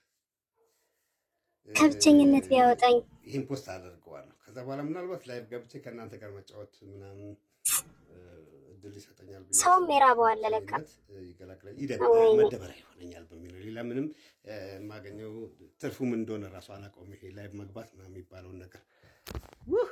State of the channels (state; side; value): identical; both; correlation 1.00